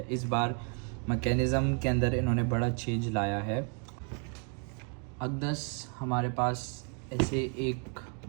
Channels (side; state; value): left; quieter; 39.8 dB